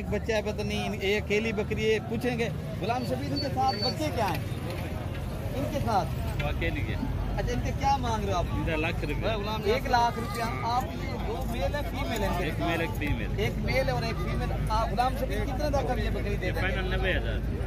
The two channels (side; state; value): both; identical; correlation 1.00